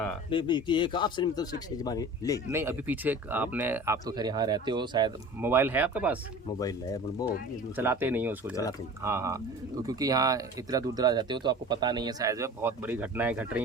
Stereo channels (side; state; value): both; normal; correlation 0.39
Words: एक आपसे मतलब शिक्षा जमाने ले नहीं अभी पीछे आप तो खैर यहाँ रहते हो, शायद मोबाइल है आपके पास? मोबाइल है वो चलाते नहीं हो उसको? चलाते नहीं। हाँ, तो क्योंकि यहाँ इतना दूर दराज रहते हो तो आपको पता नहीं है शायद बहुत बड़ी घटनाएं घट